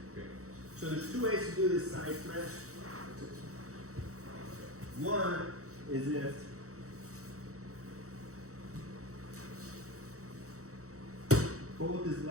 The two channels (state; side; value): late; left; 0.65 ms